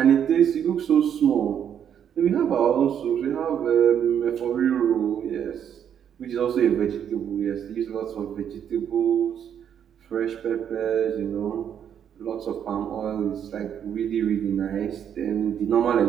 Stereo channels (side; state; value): left; quieter; 8.8 dB